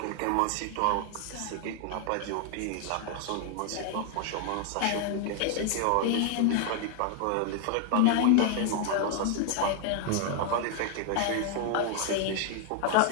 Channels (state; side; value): different; both; correlation 0.00